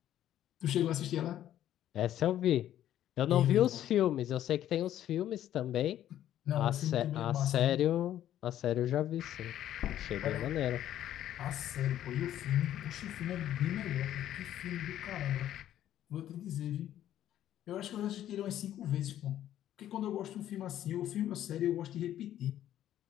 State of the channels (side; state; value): right; quieter; 11.9 dB